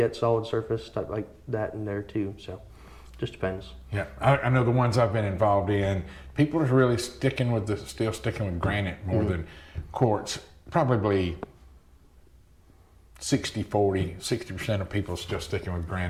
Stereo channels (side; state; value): both; identical; correlation 1.00